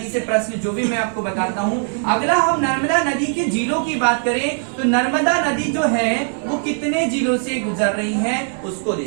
से प्रश्न जो भी मैं आपको बताता हूं। अगला हम नर्मदा नदी के जिलों की बात करें तो नर्मदा नदी जो है वो कितने जिलों से गुजर रही है उसको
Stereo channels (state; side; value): silent; left; 55 dB below the other